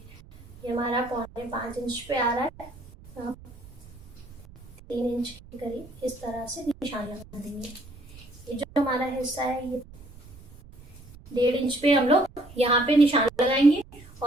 ये हमारा 4.5 इंच पे आ रहा है, 3 इंच के करीब इस तरह से निशान लगा देंगे। ये जो हमारा हिस्सा है ये 1.5 इंच पे हम लोग यहाँ पे निशान लगाएंगे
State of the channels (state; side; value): noise; right; rumble, 20 dB below the sound